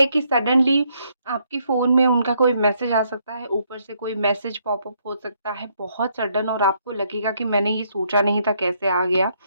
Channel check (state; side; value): inverted; both; correlation -0.72